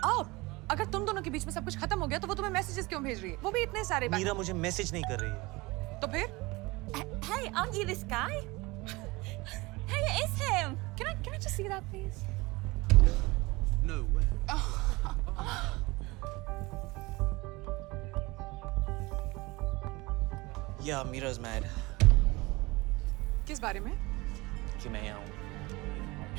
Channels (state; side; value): quieter; left; 22.9 dB